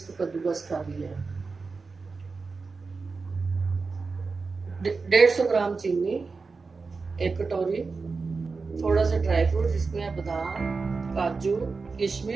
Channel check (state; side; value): quieter; left; 4.4 dB